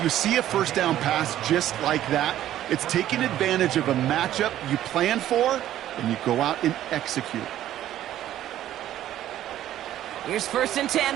you see a 1st down pass just like that, it's taking advantage of a matchup you plan for, and you go out and execute. Here's 1st and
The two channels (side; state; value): left; quieter; 12.6 dB